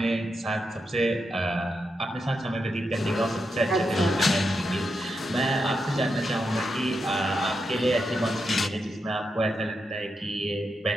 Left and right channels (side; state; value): both; normal; correlation 0.85